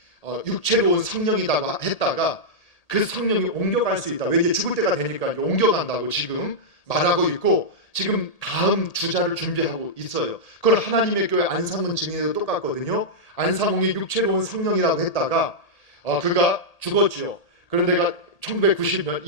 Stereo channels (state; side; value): late; right; 1.8 ms